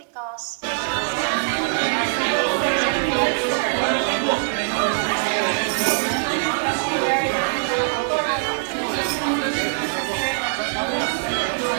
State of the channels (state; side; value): silent; left; digital silence